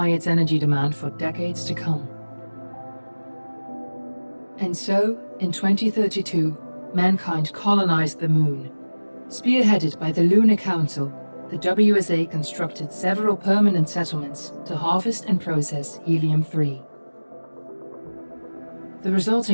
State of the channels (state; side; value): inverted; both; correlation -1.00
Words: its energy demand for decades to come. And so, in 2032, mankind colonized the Moon. Spearheaded by the Lunar Council, the WSA constructed several permanent settlements to harvest and process helium-3. The